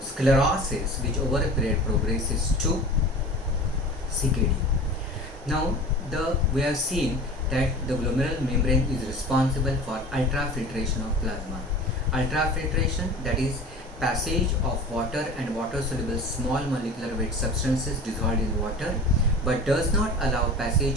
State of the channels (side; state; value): both; normal; correlation 0.38